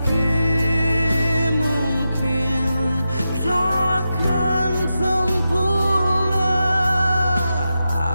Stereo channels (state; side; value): inverted; both; correlation -0.89